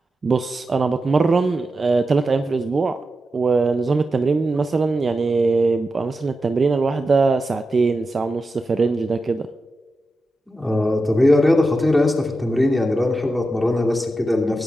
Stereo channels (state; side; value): normal; both; correlation 0.90